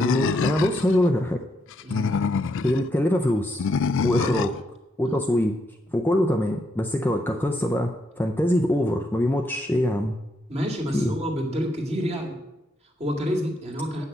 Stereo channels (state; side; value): normal; both; correlation 0.78